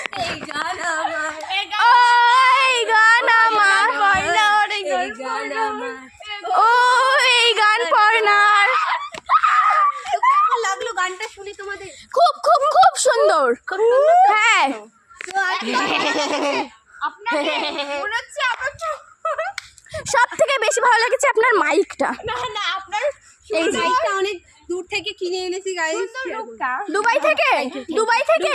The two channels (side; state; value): both; identical; correlation 1.00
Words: এই গান আমার, এই গান আমার, এই গান আমার। ও এই গান পর্ণার। কেমন লাগলো গানটা শুনে তোমাদের? খুব খুব খুব সুন্দর। হ্যাঁ সব থেকে বেশি ভালো লেগেছে আপনার মাইকটা। না আপনার এই যে মাইকটা অনেক দূর থেকে কিনে এনেছি গাইস। দুবাই থেকে? দুবাই